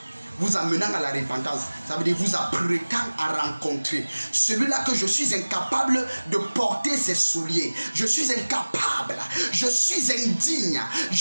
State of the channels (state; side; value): inverted; both; correlation -1.00